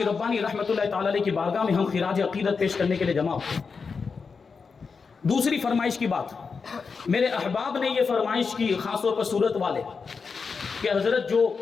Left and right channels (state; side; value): quieter; right; 5.2 dB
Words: ربانی رحمۃ اللہ تعالی علیہ کی بارگاہ میں ہم خراج عقیدت پیش کرنے کے لیے جمع ہوئے. دوسری فرمائش کی بات، میرے احباب نے یہ فرمائش کی، خاص طور پر سورت والے، کہ حضرت جو